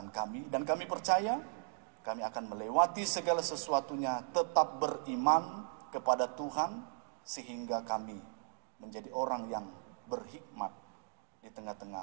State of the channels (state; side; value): silent; left; digital silence